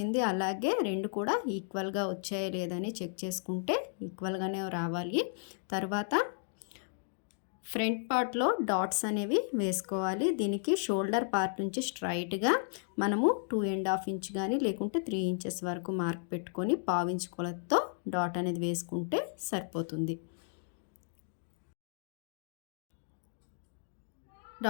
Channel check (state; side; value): silent; right; digital silence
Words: అలాగే రెండు కూడా ఈక్వల్గా వచ్చాయో లేదని చెక్ చేసుకుంటే ఈక్వల్గానే రావాలి. తర్వాత ఫ్రంట్ పార్ట్లో డాట్స్ అనేవి వేసుకోవాలి. దీనికి షోల్డర్ పార్ట్ నుంచి స్ట్రైట్గా మనము 2.5 ఇంచ్ కానీ లేకుంటే 3 ఇంచెస్ వరకు మార్క్ పెట్టుకొని పావించు కొలతతో డాట్ అనేది వేసుకుంటే సరిపోతుంది.